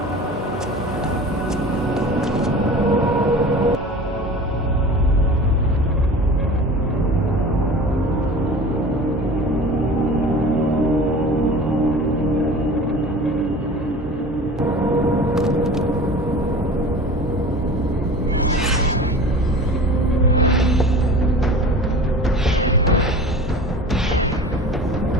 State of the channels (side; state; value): both; normal; correlation 0.38